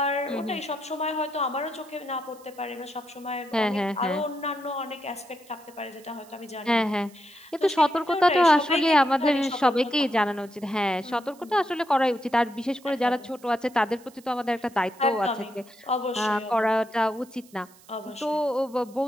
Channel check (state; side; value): noise; right; hiss, 25 dB below the sound